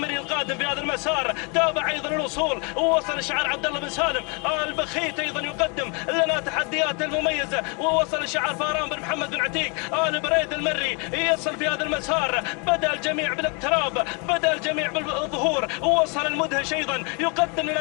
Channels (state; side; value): quieter; right; 33.7 dB